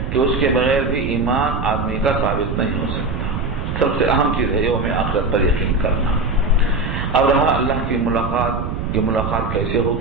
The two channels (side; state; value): right; noise; rumble, 4 dB below the sound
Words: کہ اس کے بغیر بھی ایمان آدمی کا ثابت نہیں ہو سکتا۔ سب سے اہم چیز ہے یوم آخرت پر یقین کرنا۔ اب رہا اللہ کی ملاقات، یہ ملاقات کیسے